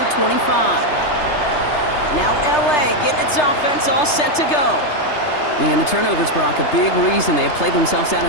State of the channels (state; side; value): late; right; 3.3 ms